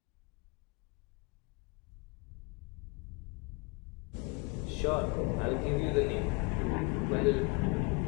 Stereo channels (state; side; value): quieter; right; 29.7 dB